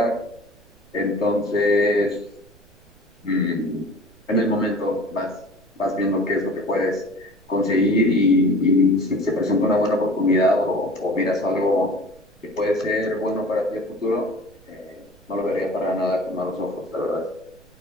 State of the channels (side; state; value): right; noise; rumble, 30 dB below the sound